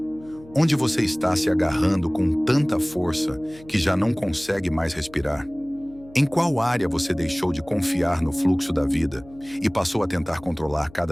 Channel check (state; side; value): noise; left; hum, 22 dB below the sound